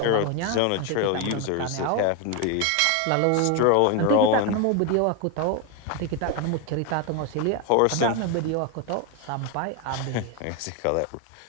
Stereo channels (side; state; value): both; different; correlation 0.02